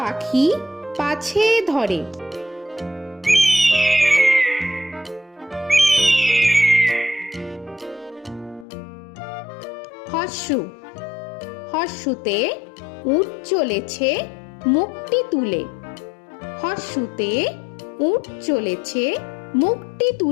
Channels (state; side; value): drops out; right; at 8.7 s